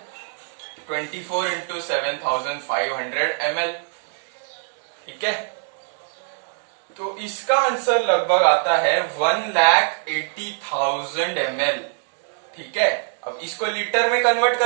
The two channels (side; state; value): left; silent; 63 dB below the other